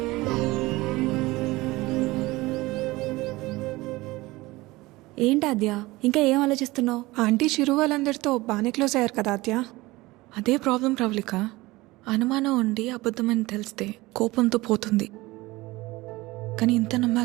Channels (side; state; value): left; quieter; 20.5 dB